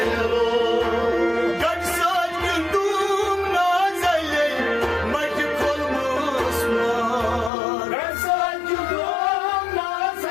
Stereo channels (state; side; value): drops out; right; at 7.5 s